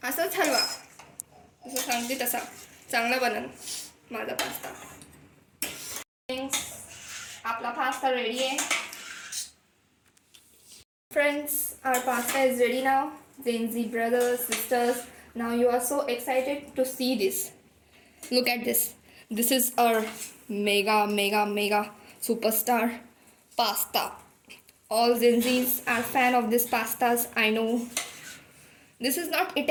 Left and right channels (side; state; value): both; identical; correlation 1.00